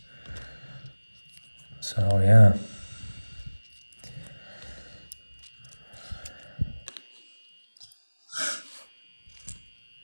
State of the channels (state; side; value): inverted; both; correlation -1.00